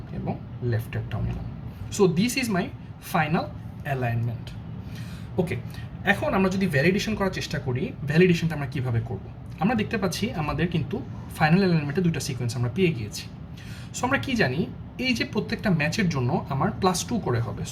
এবং লেফটেরটাও নিলাম। So this is my final alignment. Okay, এখন আমরা যদি ভ্যালিডেশন করার চেষ্টা করি, ভ্যালিডেশনটা আমরা কীভাবে করব? আমরা দেখতে পাচ্ছি আমাদের কিন্তু ফাইনাল অ্যালাইনমেন্টে দুইটা সিকোয়েন্স আমরা পেয়ে গিয়েছি। সো আমরা কি জানি, এই যে প্রত্যেকটা ম্যাচের জন্য আমার +2 করে হবে।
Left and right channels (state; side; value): identical; both; correlation 1.00